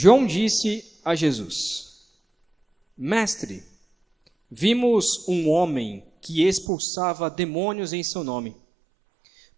disse a Jesus: Mestre, vimos um homem que expulsava demônios em seu nome,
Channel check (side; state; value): left; drops out; at 6.7 s